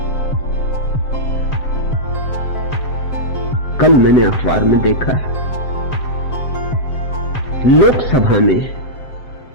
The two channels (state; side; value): late; right; 7.5 ms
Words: कल मैंने अखबार में देखा, लोकसभा में